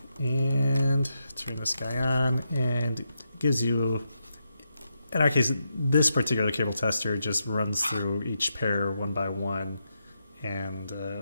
and turn this guy on, and it gives you, in our case, this particular cable tester just runs through each pair one by one, and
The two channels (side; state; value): both; inverted; correlation -0.84